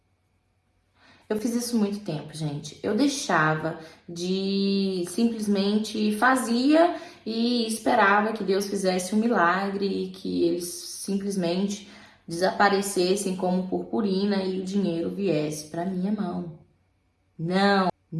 Gente. Eu deixava de simplesmente fazia e esperava que Deus fizesse um milagre e que eles simplesmente desaparecessem como purpurina e o dinheiro viesse para minha mão.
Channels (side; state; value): both; identical; correlation 1.00